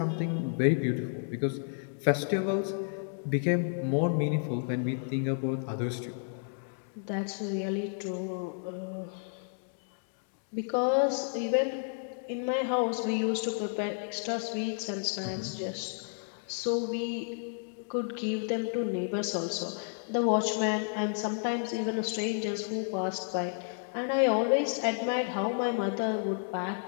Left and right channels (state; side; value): silent; right; digital silence